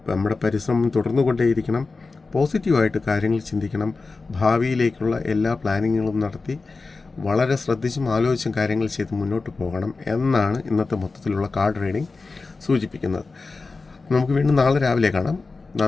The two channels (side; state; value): right; quieter; 4.0 dB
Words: നമ്മുടെ പരിശ്രമം തുടർന്നുകൊണ്ടേയിരിക്കണം. പോസിറ്റീവായിട്ട് കാര്യങ്ങൾ ചിന്തിക്കണം. ഭാവിയിലേക്കുള്ള എല്ലാ പ്ലാനിങ്ങുകളും നടത്തി വളരെ ശ്രദ്ധിച്ചും ആലോചിച്ചും കാര്യങ്ങൾ ചെയ്ത് മുന്നോട്ട് പോകണം എന്നാണ് ഇന്നത്തെ മൊത്തത്തിലുള്ള കാർഡ് റീഡിംഗ് സൂചിപ്പിക്കുന്നത്. നമുക്ക് വീണ്ടും നാളെ രാവിലെ കാണാം.